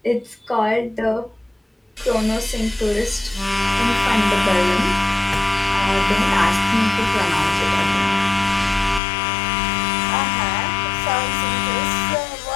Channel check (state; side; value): drops out; right; at 9.0 s